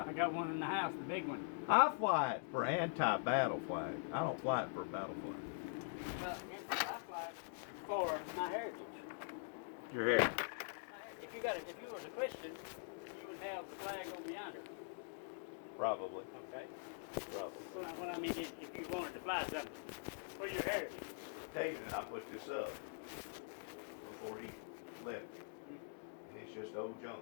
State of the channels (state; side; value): silent; right; digital silence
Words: got one in the house, the big one. I fly it for anti-battle flag. I don't fly it for battle flag. I fly for my heritage. Your head. If you was a Christian, you would have the flag over yonder. Probably. Okay. Probably. So what I mean is, if you wanted to fly something for your heritage. David and I put this up before he left. And it's just old